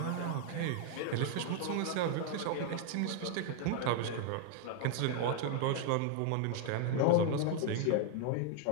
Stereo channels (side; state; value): both; different; correlation 0.00